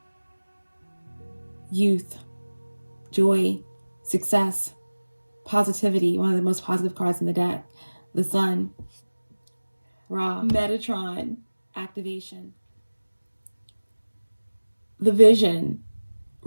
youth, joy, success, positivity, one of the most positive cards in the deck. The sun, Ra, Metatron, activation. The vision,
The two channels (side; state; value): both; inverted; correlation -1.00